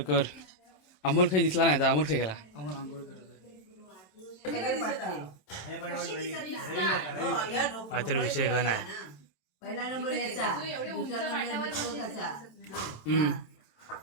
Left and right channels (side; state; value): right; late; 27 ms